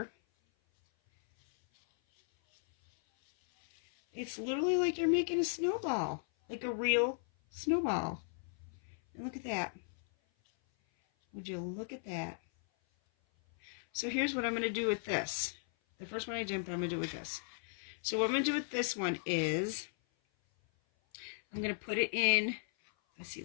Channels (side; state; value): right; silent; 54 dB below the other